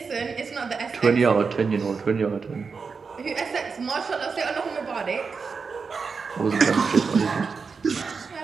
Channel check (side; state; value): left; quieter; 5.2 dB